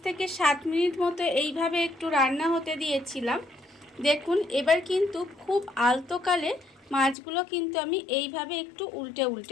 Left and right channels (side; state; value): right; drops out; at 7.2 s